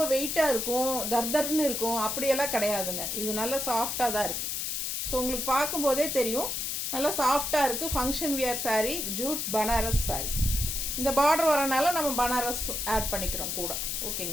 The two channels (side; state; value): left; noise; hiss, 2 dB below the sound